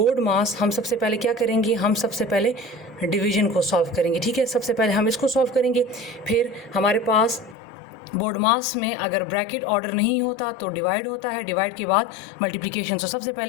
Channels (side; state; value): right; drops out; at 7.6 s